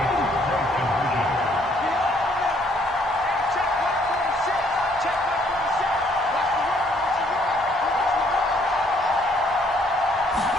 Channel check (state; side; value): normal; both; correlation 0.65